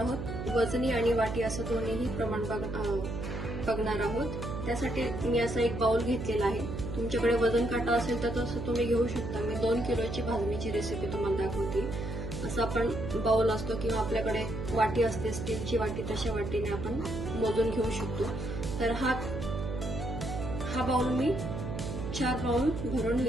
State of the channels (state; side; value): noise; right; hum, 6 dB below the sound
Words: वजनी आणि वाटी असं दोन्हीही प्रमाण बघणार आहोत. त्यासाठी मी असा एक बाउल घेतलेला आहे. तुमच्याकडे वजन काटा असेल तर तसं तुम्ही घेऊ शकता. मी 2 किलोची भाजणीची रेसिपी तुम्हाला दाखवते. असं आपण बाउल असतो किंवा आपल्याकडे वाटी असते, स्टीलची वाटी, तशा वाटीने आपण मोजून घेऊ शकतो. तर हा बाउल मी 4 बाउल भरून मी